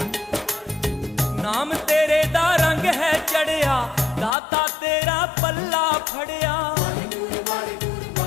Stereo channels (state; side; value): drops out; right; at 4.4 s